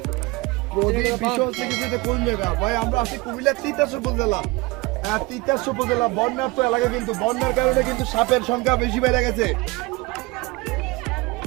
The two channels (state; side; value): quieter; left; 23.6 dB